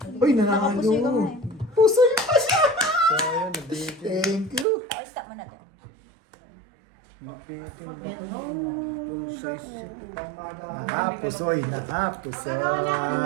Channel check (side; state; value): left; drops out; at 4.7 s